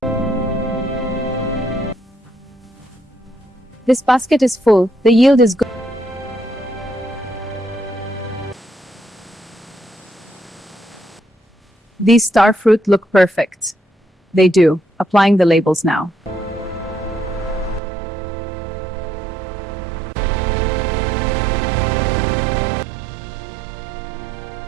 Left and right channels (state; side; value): drops out; left; at 17.8 s